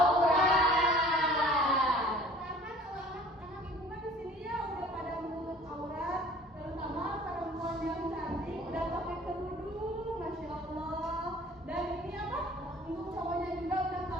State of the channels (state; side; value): normal; both; correlation 0.49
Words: Karena kalau anak-anak ibu kan di sini ya udah pada menutup aurat, terutama perempuan yang cantik udah pakai kerudung, masya Allah. Dan ini apa? Untuk cowoknya juga udah